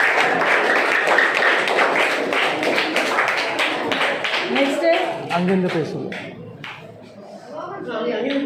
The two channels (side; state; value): both; identical; correlation 1.00